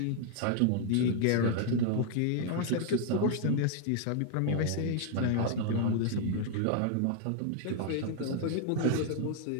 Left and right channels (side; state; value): both; different; correlation 0.00